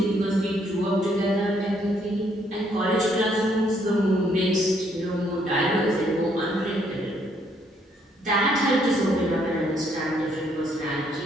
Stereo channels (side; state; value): both; normal; correlation 0.69